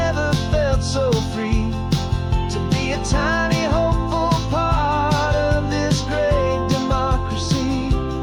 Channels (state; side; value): identical; both; correlation 1.00